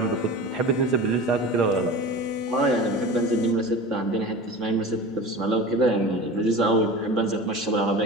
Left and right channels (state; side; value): normal; both; correlation 0.34